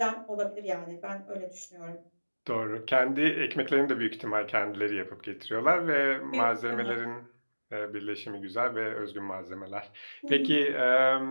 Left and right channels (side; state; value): both; inverted; correlation -1.00